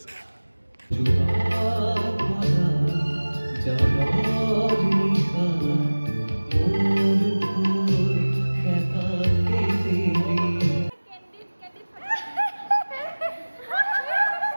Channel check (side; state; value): both; inverted; correlation -1.00